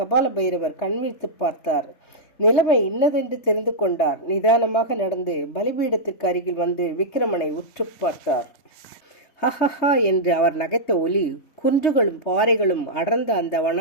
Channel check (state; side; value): late; right; 3.2 ms